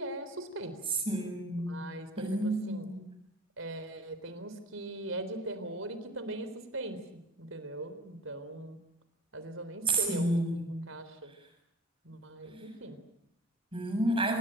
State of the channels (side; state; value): both; normal; correlation 0.41